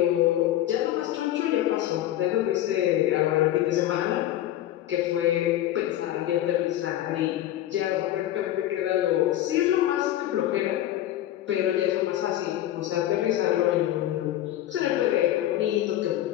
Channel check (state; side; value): quieter; right; 13.2 dB